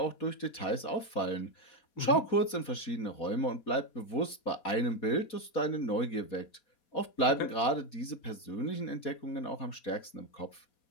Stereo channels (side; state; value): right; late; 4.2 ms